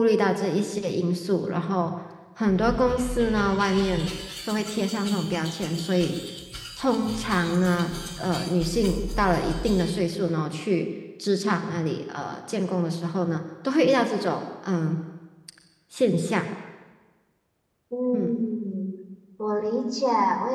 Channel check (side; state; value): both; identical; correlation 1.00